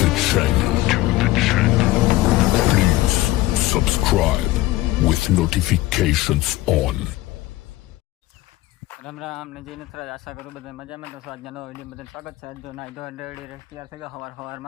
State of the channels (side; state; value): right; quieter; 17.6 dB